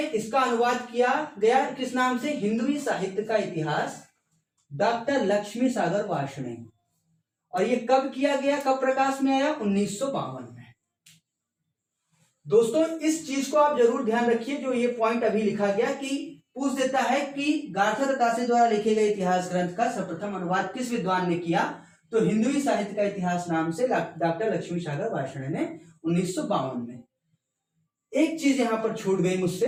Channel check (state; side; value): identical; both; correlation 1.00